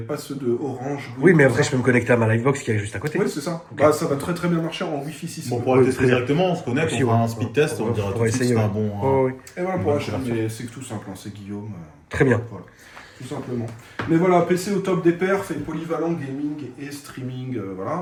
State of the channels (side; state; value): both; identical; correlation 1.00